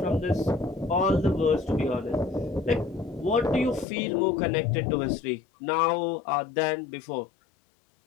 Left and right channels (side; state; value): right; drops out; at 3.9 s